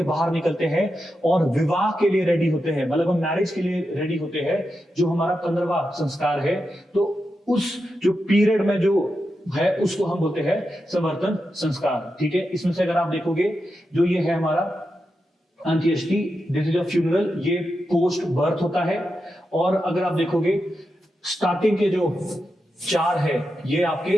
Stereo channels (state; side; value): normal; both; correlation 0.88